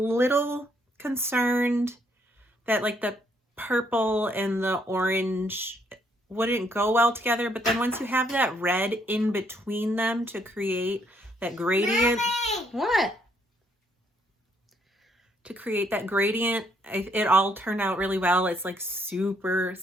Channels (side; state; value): both; normal; correlation 0.70